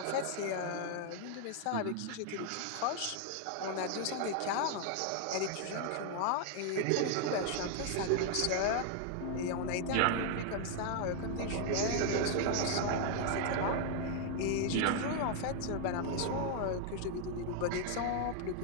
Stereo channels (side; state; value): both; different; correlation 0.00